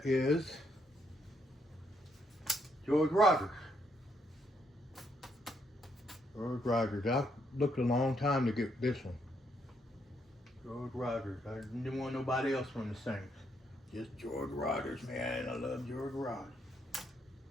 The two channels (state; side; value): normal; both; correlation 0.75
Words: is George Rogers. George Rogers. I looked a long time to get this one. George Rogers. I didn't want nobody else from the Saints. Just George Rogers, man. I love George Rogers.